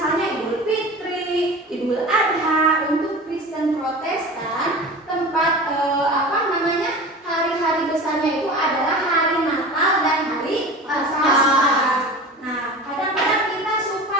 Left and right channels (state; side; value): normal; both; correlation 0.34